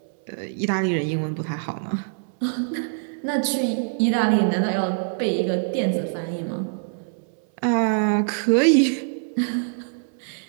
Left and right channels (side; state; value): left; silent; 63 dB below the other